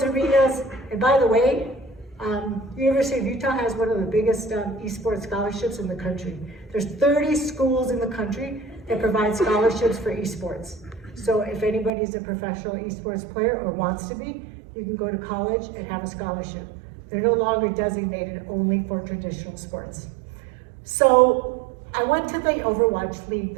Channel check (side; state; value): left; drops out; at 11.9 s